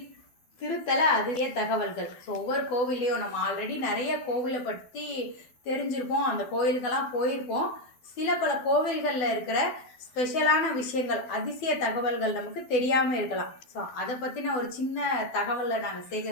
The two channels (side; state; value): right; late; 12 ms